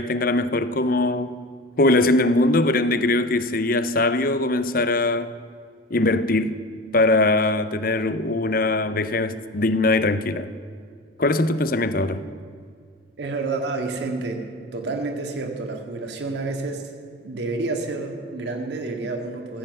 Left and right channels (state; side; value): normal; both; correlation 0.31